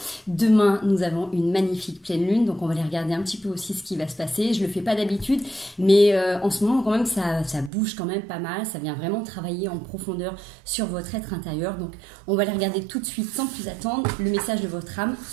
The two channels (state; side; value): drops out; left; at 7.7 s